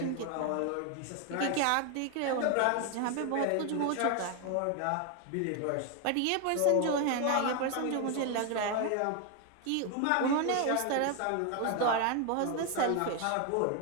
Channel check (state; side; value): different; both; correlation 0.01